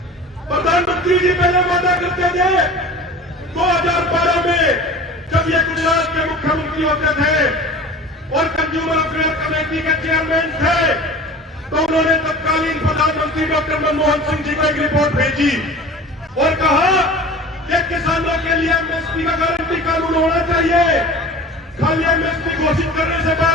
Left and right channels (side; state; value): both; normal; correlation 0.38